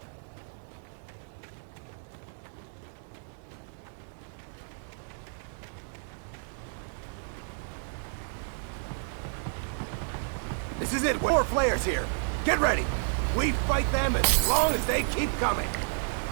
This is it. More flares here. Get ready. We fight them as long as they keep coming.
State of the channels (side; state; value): left; silent; 57 dB below the other